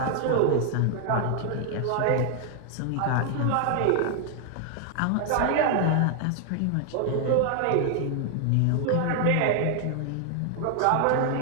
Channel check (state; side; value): different; both; correlation 0.00